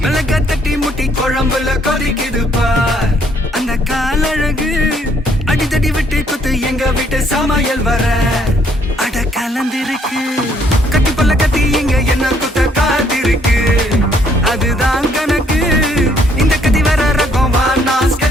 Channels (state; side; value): normal; both; correlation 0.67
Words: மிளகா தட்டி முட்டி குழம்புல கொதிக்குது பார் அந்த காலழகு அடித்தடி விட்டு குத்து எங்க வீட்டு சமையல் வர அட கலந்திருக்கு கட்டி பல்ல கத்தி இங்க என்ன குத்த காத்திருக்கு அதுதான் கணக்கு இந்த கத்தி வர ரகம் வா நான்